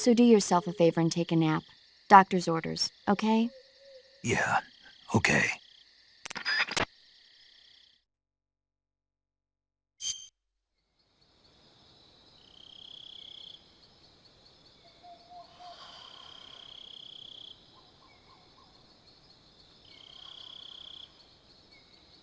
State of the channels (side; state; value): both; identical; correlation 1.00